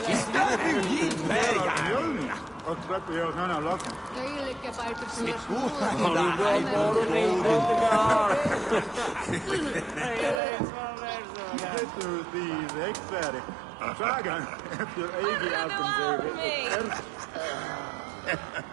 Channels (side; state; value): left; drops out; at 10.4 s